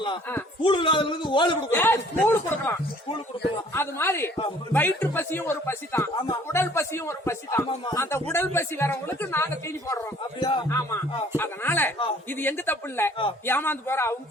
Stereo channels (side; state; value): both; normal; correlation 0.56